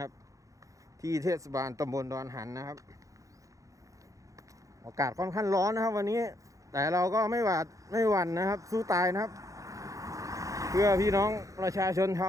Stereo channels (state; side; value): late; left; 0.16 ms